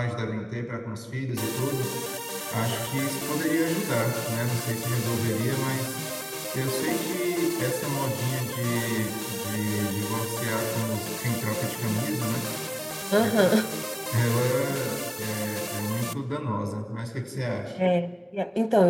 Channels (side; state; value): both; identical; correlation 1.00